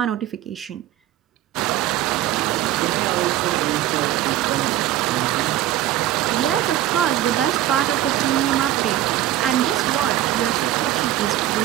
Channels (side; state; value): left; quieter; 13.4 dB